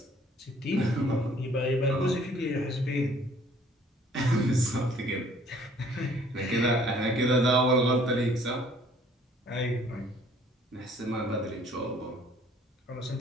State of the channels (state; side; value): normal; both; correlation 0.58